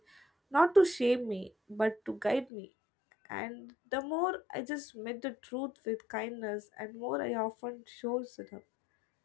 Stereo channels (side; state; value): right; drops out; at 2.5 s